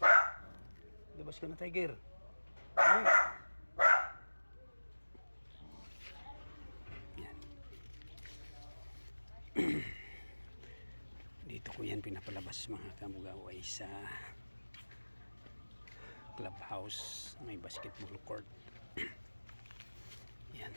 Labas ka na, Tiger. Ay. Yan. Dito ko yan pinapalabas mga kamugaway sa clubhouse, may basketball court. Yan,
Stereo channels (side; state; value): both; inverted; correlation -1.00